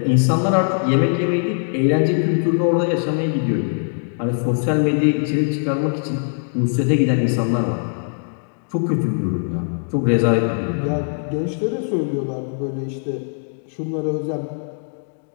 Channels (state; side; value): silent; right; digital silence